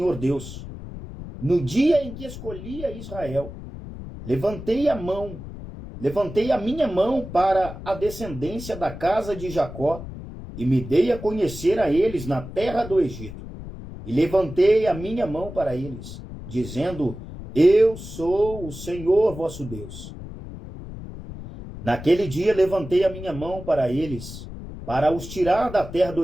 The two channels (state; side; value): noise; left; rumble, 12 dB below the sound